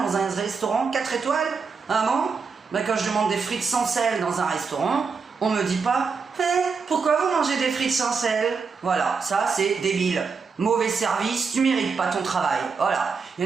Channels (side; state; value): left; quieter; 5.2 dB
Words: un restaurant 4 étoiles. Ah bon? Ben, quand je demande des frites sans sel dans un restaurant, on me dit pas pourquoi vous mangez des frites sans sel? Voilà, ça c'est débile. Mauvais service, tu mérites pas ton travail. Voilà, il